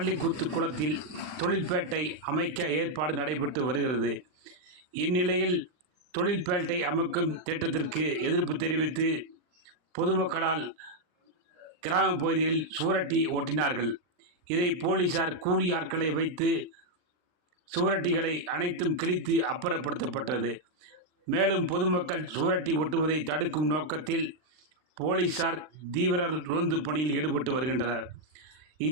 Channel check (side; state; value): left; late; 39 ms